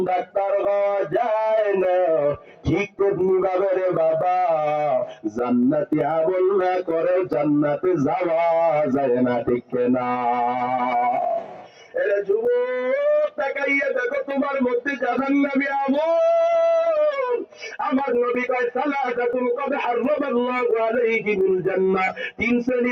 ডাক্তার হওয়া যায় না, ঠিক তেমনি ভাবে রে বাবা জান্নাতি আমল না করে জান্নাতে যাওয়া যায় না, ঠিক না? এরে যুবক, তাকাইয়া দেখো তোমার মধ্যে জাহান্নামী আমল। আমার নবী কয়, সালাতাতুন কদ হারামাল্লাহু আলাইহিমুল জান্নাহ, তিন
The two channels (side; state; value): both; identical; correlation 1.00